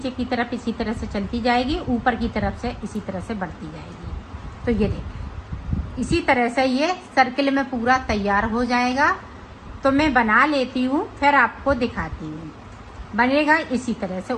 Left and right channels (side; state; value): both; identical; correlation 1.00